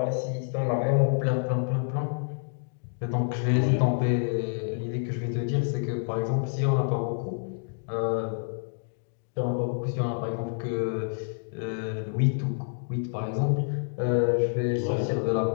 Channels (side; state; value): right; silent; digital silence